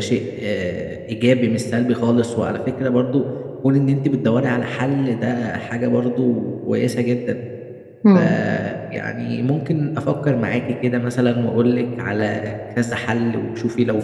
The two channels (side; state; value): both; identical; correlation 1.00